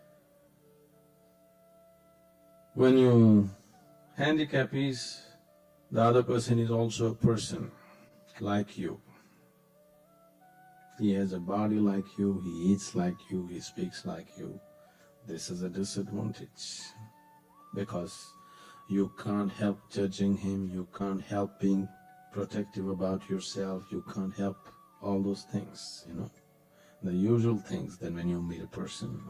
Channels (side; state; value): both; identical; correlation 1.00